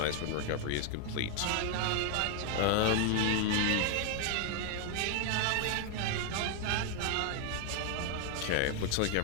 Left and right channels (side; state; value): both; different; correlation 0.01